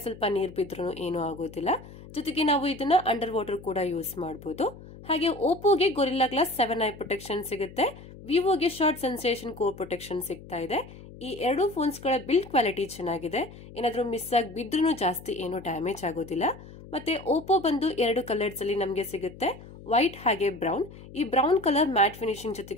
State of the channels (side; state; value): left; noise; hum, 17 dB below the sound